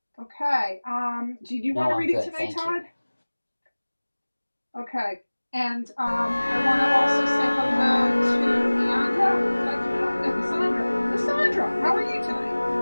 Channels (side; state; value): both; inverted; correlation -1.00